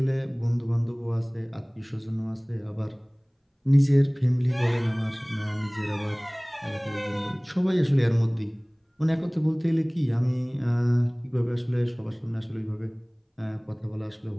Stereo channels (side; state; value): both; identical; correlation 1.00